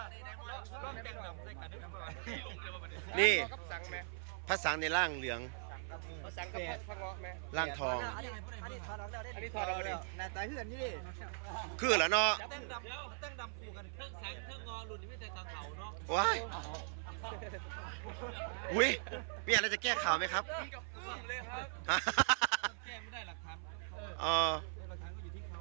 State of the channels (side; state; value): left; silent; 51 dB below the other